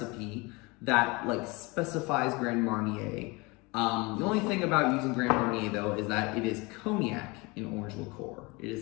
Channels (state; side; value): quieter; right; 25.9 dB